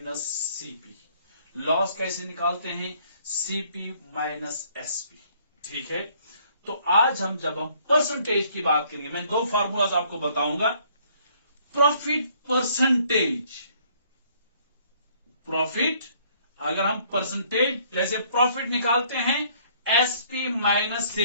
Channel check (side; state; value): both; inverted; correlation -0.62